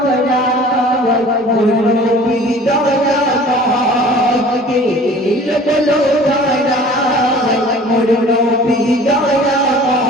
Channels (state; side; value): normal; both; correlation 0.46